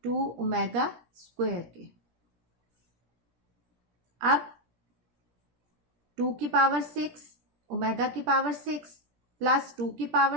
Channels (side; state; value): left; late; 17 ms